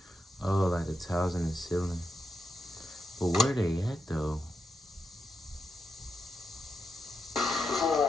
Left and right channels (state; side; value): normal; both; correlation 0.85